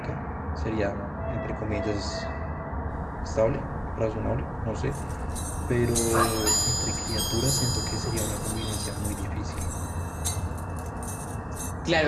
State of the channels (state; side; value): identical; both; correlation 1.00